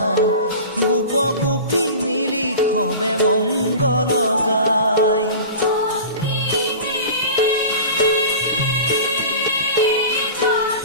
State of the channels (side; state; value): both; inverted; correlation -0.35